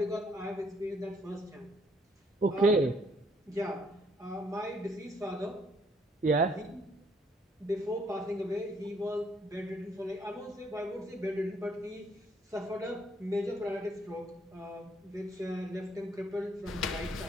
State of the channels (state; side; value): normal; both; correlation 0.67